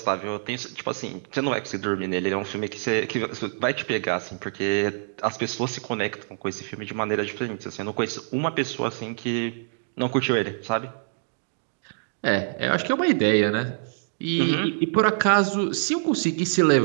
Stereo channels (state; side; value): silent; left; digital silence